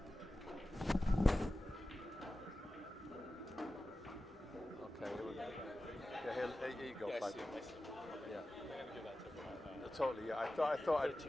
Okay, here we go. Yeah, here you go. Yeah. Totally. Yeah, I thought.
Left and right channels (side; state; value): both; normal; correlation 0.95